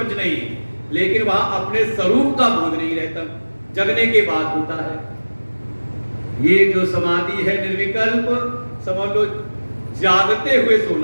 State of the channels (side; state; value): both; inverted; correlation -1.00